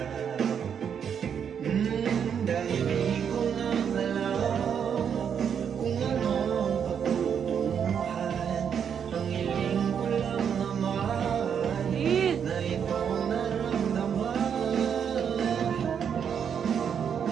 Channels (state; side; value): quieter; left; 7.7 dB